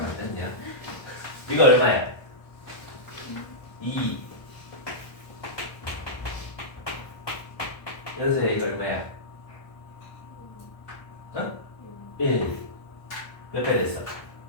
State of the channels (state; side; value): late; right; 1.3 ms